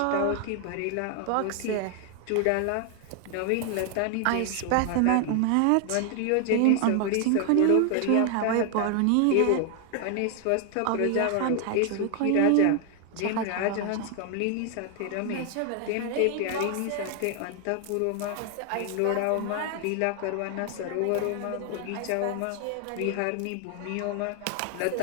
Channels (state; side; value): different; both; correlation 0.00